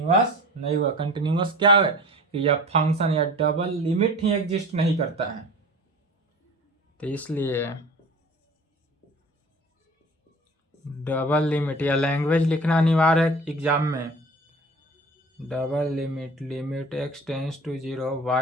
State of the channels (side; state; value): both; normal; correlation 0.40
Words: नहीं हुआ। कंटिन्यूअस क्या है? कि यह फंक्शन या डबल लिमिट ही एग्जिस्ट नहीं करता है। तो इसलिए डबल लिमिट या लैंग्वेज लिखना अनिवार्य है एग्जाम में। Double limit, limit x tends to 0